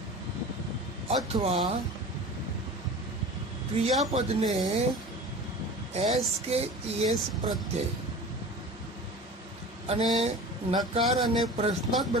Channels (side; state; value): both; normal; correlation 0.36